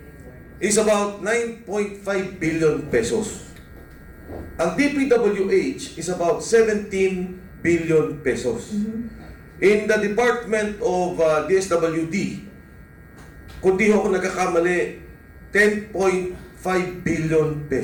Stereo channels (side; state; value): both; identical; correlation 1.00